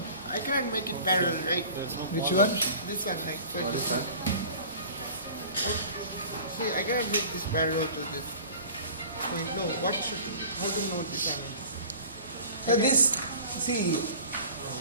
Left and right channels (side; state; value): both; inverted; correlation -0.44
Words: I can't make it parallel, right? which one? This one, like for this one. See, I cannot make this parallel to this point. No, what should? How to know this? So this, see,